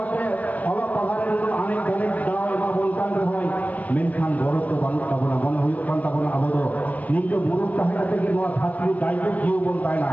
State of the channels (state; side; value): late; right; 0.076 ms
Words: অলক পাহাড়ের অনেক অনেক দাও এমা বলকান হয় মেনখান গরত বানুক তাবনা মনে হুইক কান তাবনা আবো দো নিকে মুরুক তাহেনা থেকে নোয়া ছাত্রী দায়িত্ব জিও বন তাই না